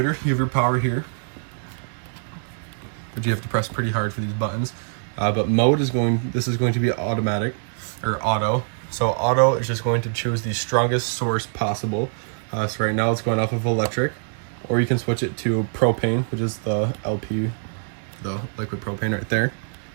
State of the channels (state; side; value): silent; left; 63 dB below the other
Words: you have your power here, but you have to press pretty hard for these buttons. But mode is this is going to be automatic, or auto. So auto is just going to choose the strongest source possible. So right now it's going off of electric, or you can switch it to propane, which is the LP, the liquid propane right there.